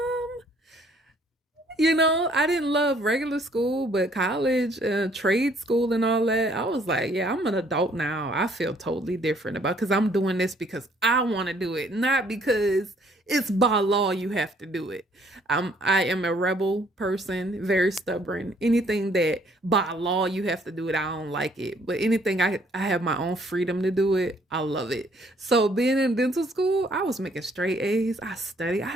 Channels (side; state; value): both; normal; correlation 0.63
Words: I didn't love regular school, but college, trade school, and all that, I was like, yeah, I'm an adult now. I feel totally different about because I'm doing this because I want to do it, not because it's by law you have to do it. I am a rebel person, very stubborn. Anything that by law you have to do it, I don't like it. But anything I have my own freedom to do it, I love it. So being in dental school, I was making straight A's. I studied, I